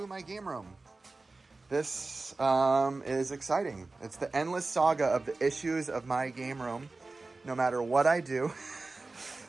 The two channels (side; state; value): left; quieter; 3.5 dB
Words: my game room. This is exciting. It's the endless saga of the issues of my game room. No matter what I do,